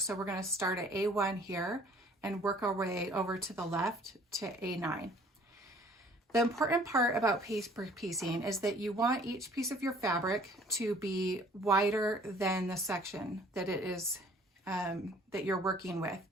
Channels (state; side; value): normal; both; correlation 0.55